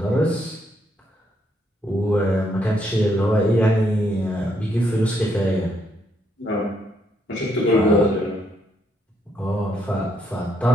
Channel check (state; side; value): normal; both; correlation 0.74